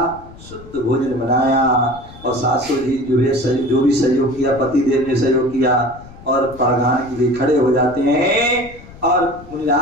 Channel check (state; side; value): noise; left; rumble, 19 dB below the sound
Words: शुद्ध भोजन बनाया, और सासू जी जो भी सहयोग किया, पति देव ने सहयोग किया, और पढ़ाने के लिए खड़े हो जाते हैं। और